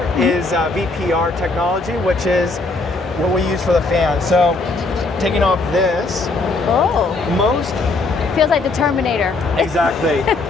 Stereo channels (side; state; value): right; quieter; 3.4 dB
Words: is VPR technology, which is what we use for the fan. So taking off this, most feels like the Terminator. Exactly.